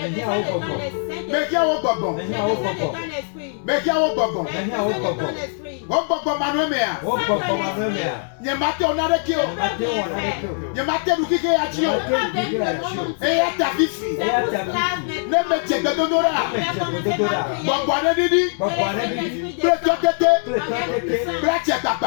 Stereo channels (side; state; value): right; silent; 61 dB below the other